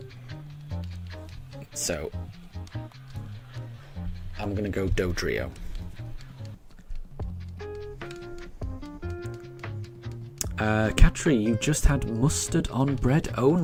So I'm going to go Dodrio. Katri, you just had mustard on bread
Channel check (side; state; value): both; identical; correlation 1.00